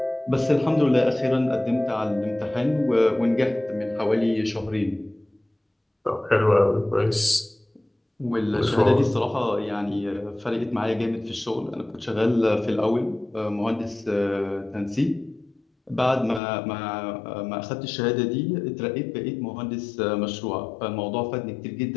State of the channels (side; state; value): right; drops out; at 16.4 s